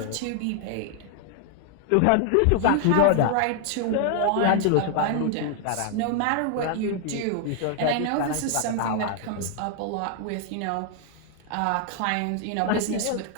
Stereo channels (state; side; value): different; both; correlation 0.00